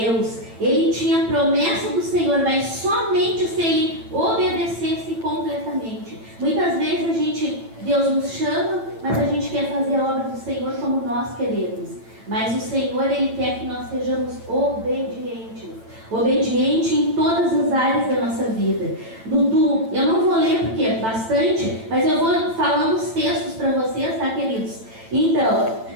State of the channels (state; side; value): late; left; 9.0 ms